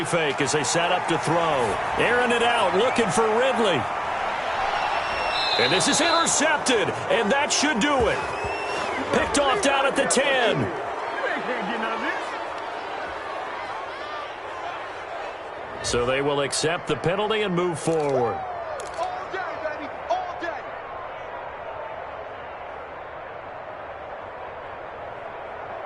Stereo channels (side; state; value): both; identical; correlation 1.00